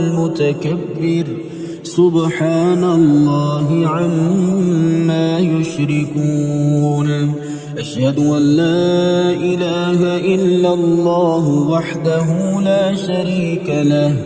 سبحان الله عما يشركون. أشهد أن لا إله إلا الله وحده لا شريك له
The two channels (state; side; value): identical; both; correlation 1.00